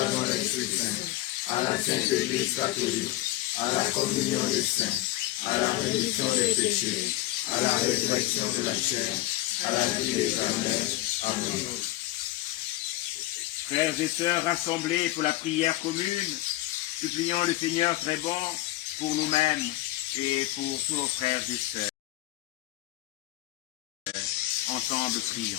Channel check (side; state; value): right; quieter; 16.9 dB